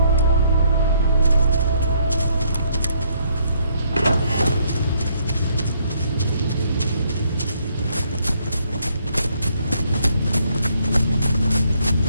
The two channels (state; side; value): inverted; both; correlation -0.69